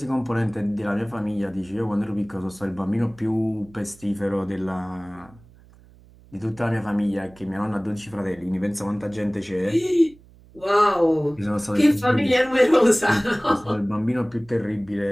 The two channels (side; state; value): right; noise; hum, 25 dB below the sound